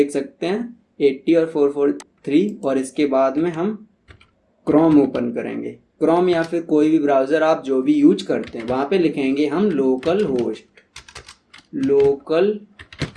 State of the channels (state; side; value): identical; both; correlation 1.00